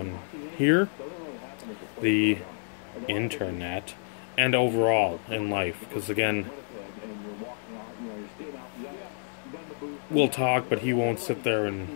here, the internet, and overall in life. Because again, we'll talk, but he won't sit there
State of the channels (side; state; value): right; silent; digital silence